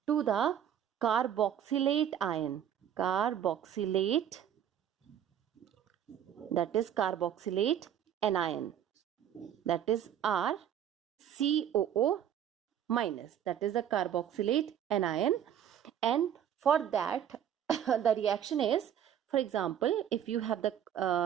to the carboxylate ion. Carboxylate, that is carboxylate anion, that is RCOO minus, that is the carboxylate anion. And for that the reaction is, for example, if you have the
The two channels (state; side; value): quieter; left; 9.8 dB